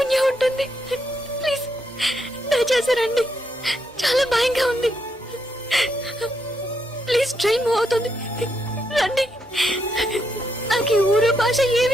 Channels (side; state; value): both; normal; correlation 0.79